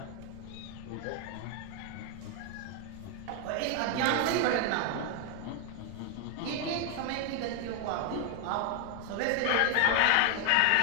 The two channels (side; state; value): both; different; correlation 0.00